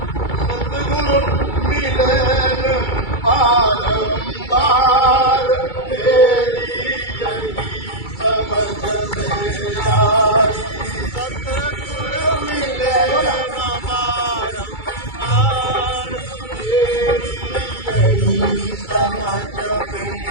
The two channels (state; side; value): late; right; 2.3 ms